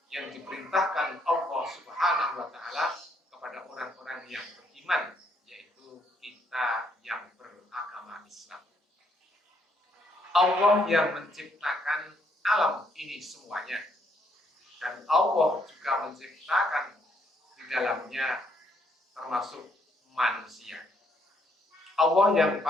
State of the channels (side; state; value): both; normal; correlation 0.71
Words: yang diperintahkan Allah Subhanahu wa taala kepada orang-orang yang beriman, yaitu kita yang beragama Islam. Allah yang menciptakan alam ini semuanya. Dan Allah juga menciptakan di dalamnya termasuk manusia. Allah yang